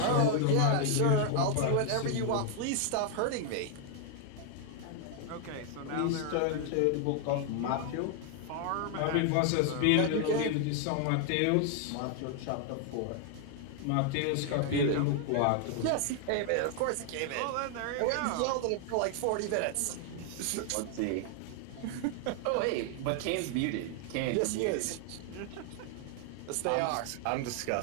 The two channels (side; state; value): both; different; correlation 0.00